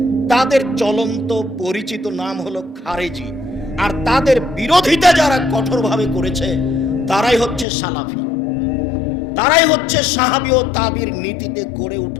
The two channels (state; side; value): drops out; right; at 7.7 s